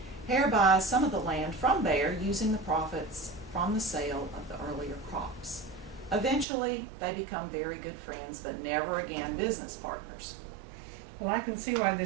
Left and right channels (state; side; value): drops out; left; at 6.5 s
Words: Hare buys some of the land from Bear using the profits from the sale of the earlier crops. Eventually, they become very good friends, but never again business partners. Well, I can see why